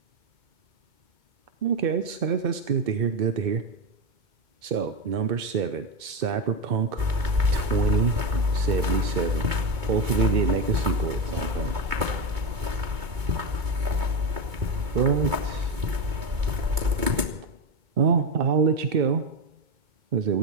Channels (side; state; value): left; late; 2.3 ms